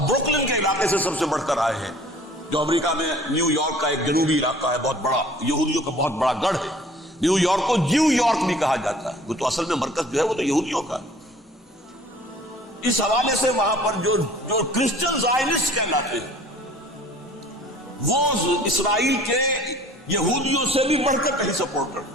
کے علاقے سے سب سے بڑھ کر آئے ہیں، جو امریکہ میں نیو یارک کا ایک جنوبی علاقہ ہے بہت بڑا، یہودیوں کا بہت بڑا گڑھ ہے. نیو یارک کو جیو یارک بھی کہا جاتا ہے، وہ تو اصل میں مرکز جو ہے وہ تو یہودیوں کا ہے. اس حوالے سے وہاں پر جو کرسچن زائنسٹ کہلاتے ہیں وہ اسرائیل کے یہودیوں سے بھی بڑھ کر کہیں سپورٹ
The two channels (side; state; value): both; normal; correlation 0.50